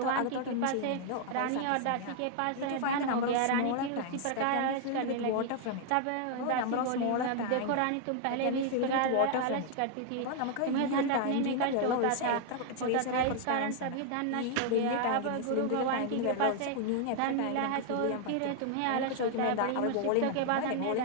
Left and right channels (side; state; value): both; different; correlation 0.00